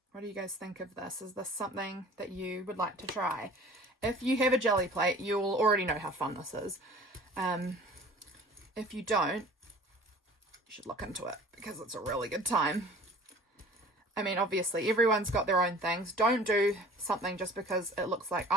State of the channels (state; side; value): normal; both; correlation 0.46